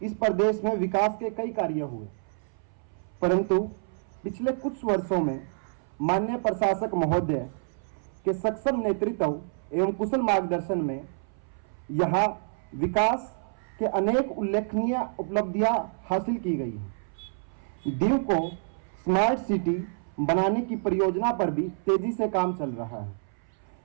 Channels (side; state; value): left; silent; 59 dB below the other